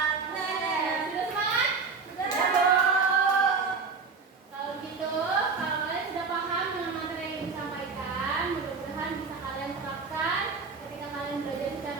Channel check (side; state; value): left; quieter; 4.9 dB